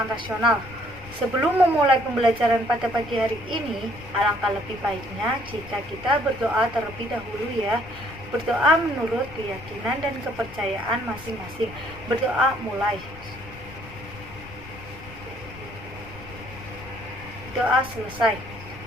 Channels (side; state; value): left; noise; rumble, 17 dB below the sound